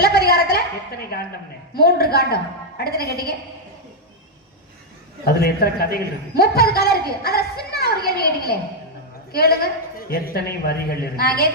எத்தனை காண்டம்னு? 3 காண்டம். அடுத்து என்ன கேட்டீங்க? அதுல எத்தனை கதைகள் இருக்கு? 30 கதை இருக்கு. அதுல சின்ன ஒரு கேள்வி கேட்டீங்களே, கேளுங்க. எத்தனை வரிகள் இருக்கு? நான்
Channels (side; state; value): both; normal; correlation -0.02